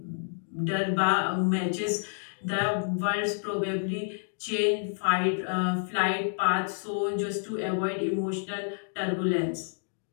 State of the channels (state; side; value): silent; right; digital silence